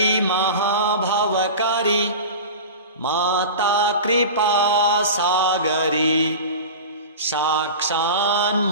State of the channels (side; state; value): both; inverted; correlation -0.31